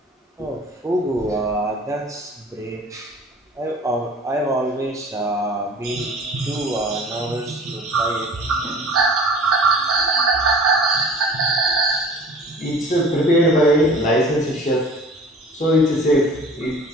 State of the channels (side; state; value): both; normal; correlation 0.45